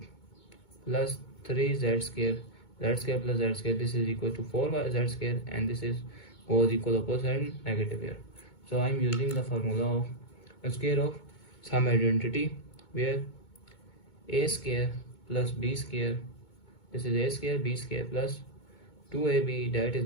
plus 3z square, z square plus z square, this is equal to 4yz square, and this is goes equal opposite and negative here. So I'm using the formula of a square of some identity, where a square plus b square this is a square b square plus 2ab, that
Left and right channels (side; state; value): right; late; 2.2 ms